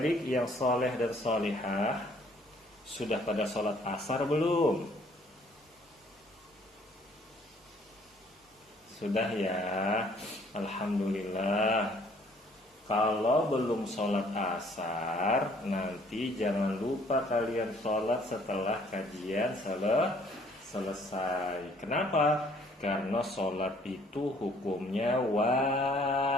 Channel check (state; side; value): normal; both; correlation 0.60